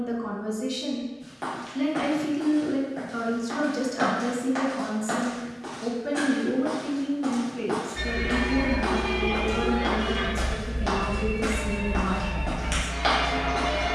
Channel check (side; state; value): both; identical; correlation 1.00